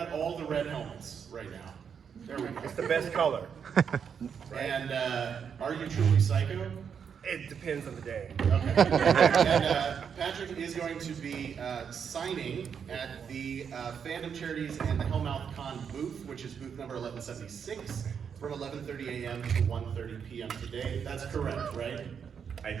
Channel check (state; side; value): quieter; left; 7.1 dB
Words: all the red helmets right now. There we go. It's the best color. And are you truly Psycho? It depends on the day. Okay. And Patrick is going to be signing at the Fandom Charities and the Hellmouth Con booth, which is booth number 1176, from 11:30 a.m. to 1:30 p.m. today. That's correct, right? I